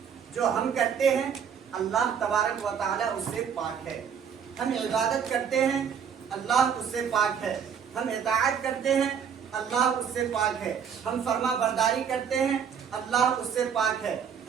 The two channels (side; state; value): left; quieter; 7.5 dB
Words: جو ہم کرتے ہیں اللہ تبارک و تعالیٰ اس سے پاک ہے، ہم عبادت کرتے ہیں اللہ اس سے پاک ہے، ہم اطاعت کرتے ہیں اللہ اس سے پاک ہے، ہم فرما برداری کرتے ہیں اللہ اس سے پاک ہے،